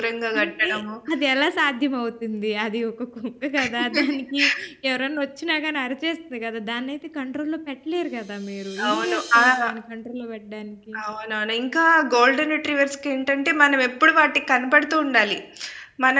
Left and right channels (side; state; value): both; identical; correlation 1.00